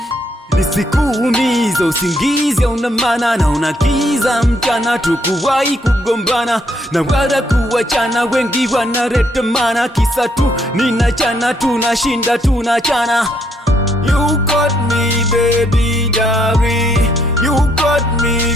nisikuumiza usingizi una maana na unakiza mchana, tukuwahi kugombana na wala kuachana, wengi wanareta mana kisa tu ninachana, tunashinda tunachana. You got me baby daddy, you got me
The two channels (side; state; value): both; normal; correlation 0.72